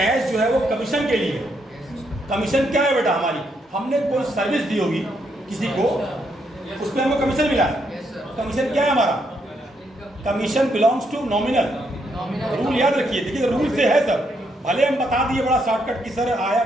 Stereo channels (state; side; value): normal; both; correlation 0.76